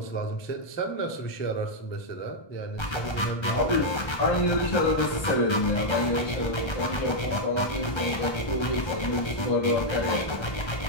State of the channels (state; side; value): late; right; 1.3 ms